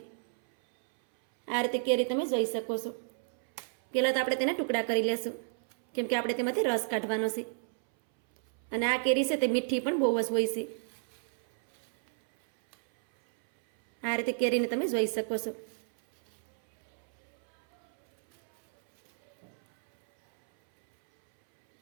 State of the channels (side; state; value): left; silent; 57 dB below the other